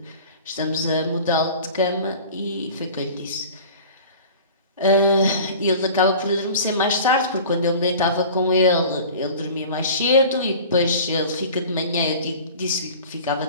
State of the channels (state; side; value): inverted; both; correlation -0.41